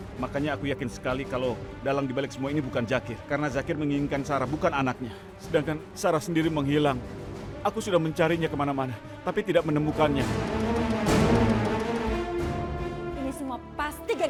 Makanya aku yakin sekali kalau dalang dibalik semua ini bukan Zakir. Karena Zakir menginginkan Sarah, bukan anaknya. Sedangkan Sarah sendiri menghilang. Aku sudah mencarinya kemana-mana, tapi tidak menemukannya. Ini semua pasti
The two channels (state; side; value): identical; both; correlation 1.00